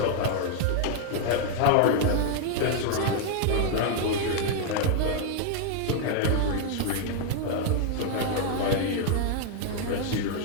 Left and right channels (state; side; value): different; both; correlation 0.00